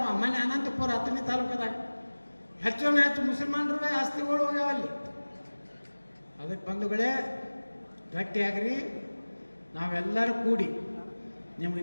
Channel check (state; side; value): inverted; both; correlation -1.00